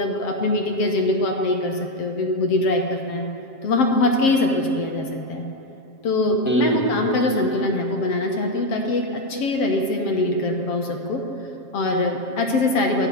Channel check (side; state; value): right; late; 7.5 ms